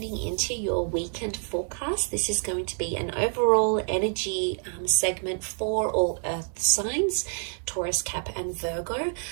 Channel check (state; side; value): silent; left; 60 dB below the other